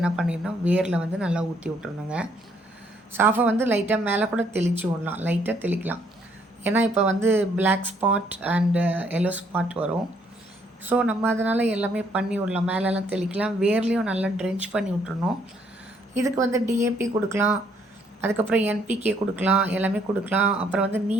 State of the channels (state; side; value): normal; both; correlation 0.68